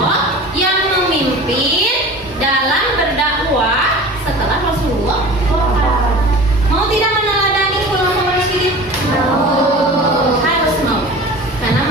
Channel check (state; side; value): normal; both; correlation 0.38